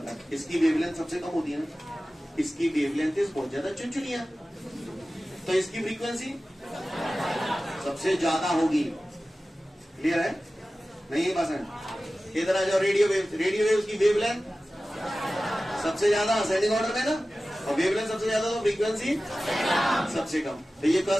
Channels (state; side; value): normal; both; correlation 0.96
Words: था? इसकी वेवलेंथ सबसे कम होती है ना, इसकी वेवलेंथ बहुत ज्यादा चुनचुनिया, तो इसकी फ्रीक्वेंसी सबसे ज्यादा होगी। क्लियर है? नहीं है पसंद? इधर आ जाओ। रेडियो वेव की वेवलेंथ सबसे ज्यादा असेंडिंग ऑर्डर में ना, और वेवलेंथ सबसे ज्यादा तो फ्रीक्वेंसी सबसे कम। तो ये